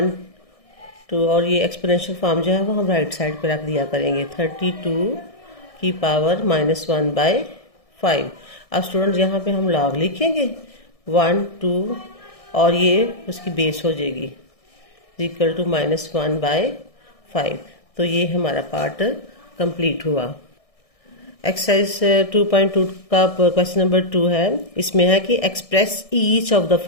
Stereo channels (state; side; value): late; right; 1.6 ms